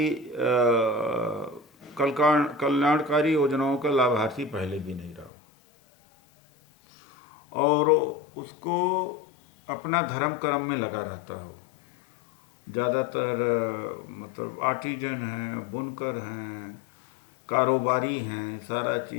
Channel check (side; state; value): right; drops out; at 5.3 s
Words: कल्याणकारी योजनाओं का लाभार्थी पहले भी नहीं रहा, और उसको अपना धर्म कर्म में लगा रहता हो। ज़्यादातर मतलब आर्टिजन हैं, बुनकर हैं, कारोबारी हैं, सारा